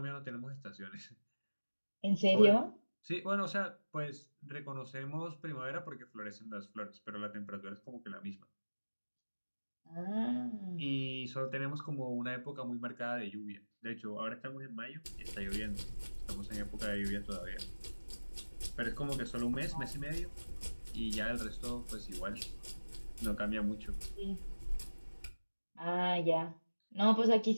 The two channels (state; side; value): inverted; both; correlation -1.00